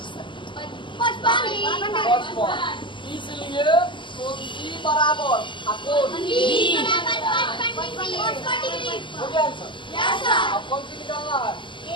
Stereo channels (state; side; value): late; right; 0.24 ms